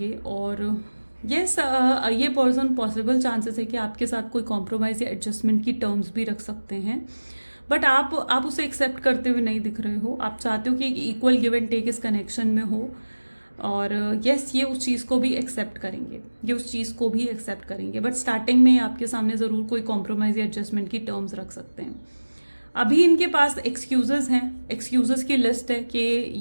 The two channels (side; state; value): both; inverted; correlation -1.00